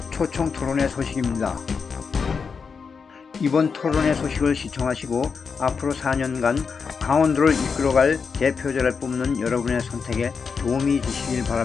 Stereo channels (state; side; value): quieter; right; 5.6 dB